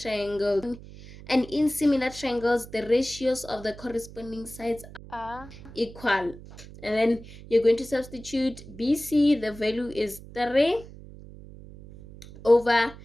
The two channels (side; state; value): right; noise; hum, 17 dB below the sound